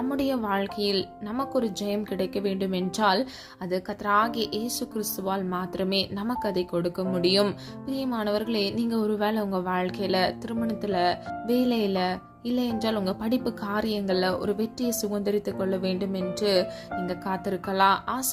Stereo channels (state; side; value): identical; both; correlation 1.00